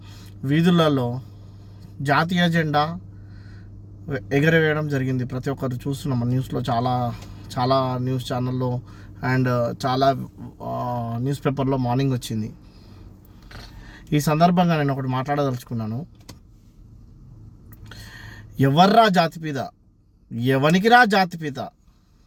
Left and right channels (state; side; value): identical; both; correlation 1.00